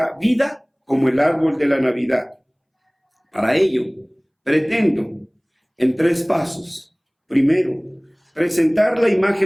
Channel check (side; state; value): both; identical; correlation 1.00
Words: vida como el árbol de la Navidad. Para ello, pretendo en 3 pasos. Primero, presentar la